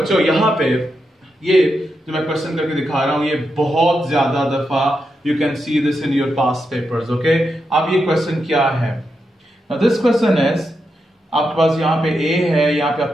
यहां पे ये जो मैं क्वेश्चन करके दिखा रहा हूं, ये बहुत ज्यादा दफा you can see this in your past papers. Okay, अब ये क्वेश्चन क्या है? Now this question is, आपके पास यहाँ पे A है, यहाँ पे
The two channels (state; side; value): normal; both; correlation 0.85